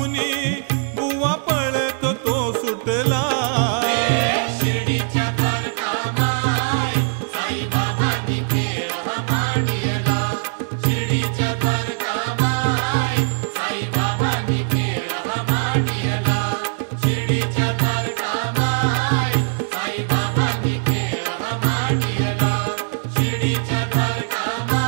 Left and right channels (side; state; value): left; silent; digital silence